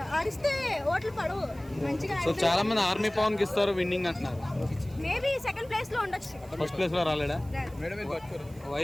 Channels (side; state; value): right; noise; hiss, 25 dB below the sound